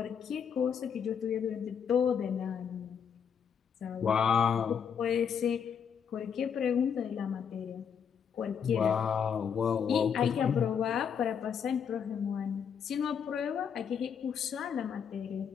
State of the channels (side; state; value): right; quieter; 7.4 dB